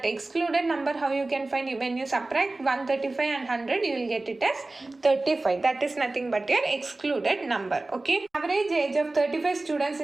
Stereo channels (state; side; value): quieter; left; 3.0 dB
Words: excluded number how you can find, when you subtract 135 and 100 you will get it as 35. That is nothing but your excluded number, okay? Average age of 35 students